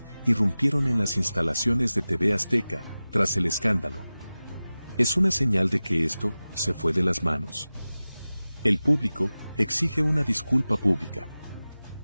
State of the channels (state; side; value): inverted; both; correlation -0.96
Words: irrumpieron en las instalaciones de TV Azteca, tras el escándalo. Es una señal de que esto se fue de las manos. El público exige una disculpa pública.